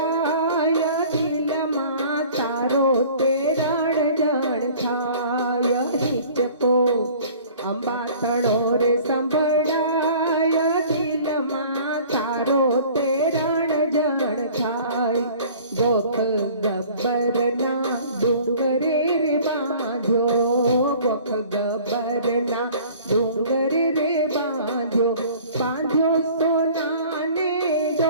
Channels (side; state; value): both; inverted; correlation -0.48